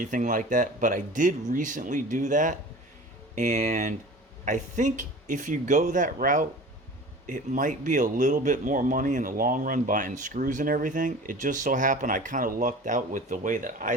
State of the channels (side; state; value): both; normal; correlation 0.39